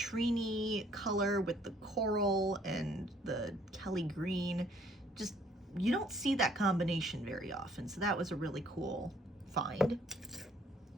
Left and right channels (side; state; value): both; normal; correlation 0.62